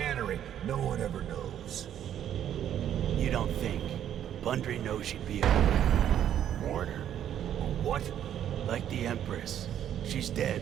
No one ever knows. You don't think? Bundry knows she'd be a martyr. What? Like the Empress. She's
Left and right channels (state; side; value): quieter; left; 10.3 dB